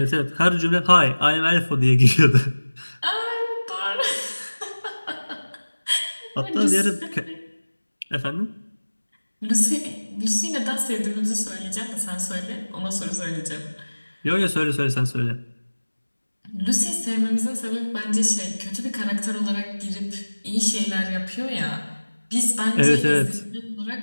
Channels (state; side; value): inverted; both; correlation -1.00